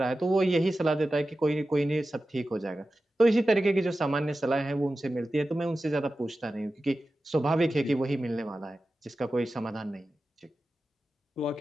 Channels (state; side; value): normal; both; correlation 0.94